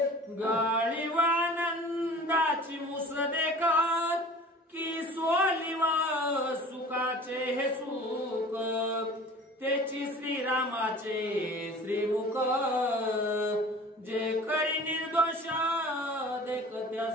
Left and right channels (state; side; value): normal; both; correlation 0.43